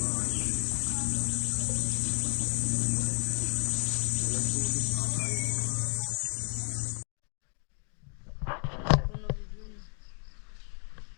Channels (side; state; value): right; quieter; 39.9 dB